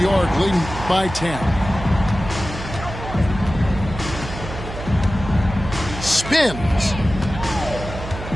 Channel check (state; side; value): noise; right; hum, 10 dB below the sound